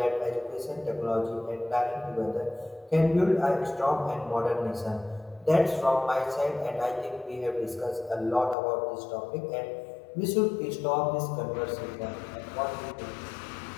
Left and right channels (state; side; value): drops out; right; at 8.6 s